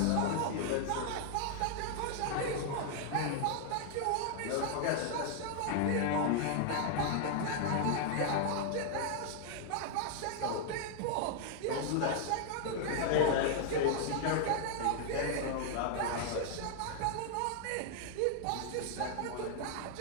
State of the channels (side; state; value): both; different; correlation 0.00